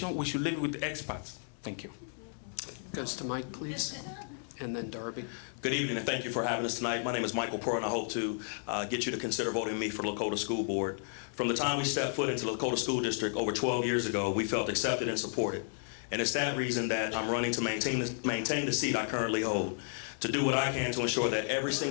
We should leave it with the experts. Thank you. Goes to Mike, please, and then Darby. Good evening, and thank you for having us tonight. My name is Michael Pearl, and I hope to get you to consider voting me for Lakota School Board. From the time we stepped foot into the Lakota School District over 12 years ago, we felt accepted and supported. And it's that reason that I'm running to maintain the seat I currently hold, to do what I can to ensure that every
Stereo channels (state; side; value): silent; right; 56 dB below the other